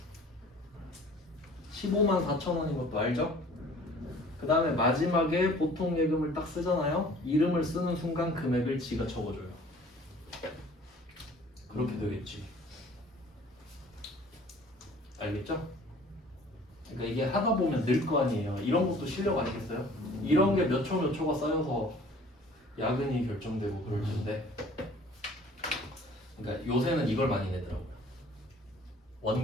15만 4천 원인 것도 알죠? 그 다음에 마지막에 보통 예금을 딱 쓰잖아요. 이름을 쓰는 순간 금액을 지가 적어줘요. 그렇게 되겠지. 알겠죠? 그러니까 이게 하다 보면 늘 거 아니에요. 이런 것도 실력 아니겠어요? 이런 게 몇 초 몇 초가 쌓여서 야근이 결정되고 그럴 텐데. 그러니까 요새는 이걸 많이 내더라고요.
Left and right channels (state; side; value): normal; both; correlation 0.51